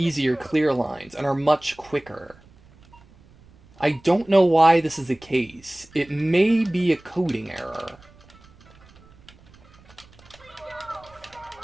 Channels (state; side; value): noise; right; rumble, 26 dB below the sound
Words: clear lines and are much quicker. I don't know why this is the case. It may be a coding error.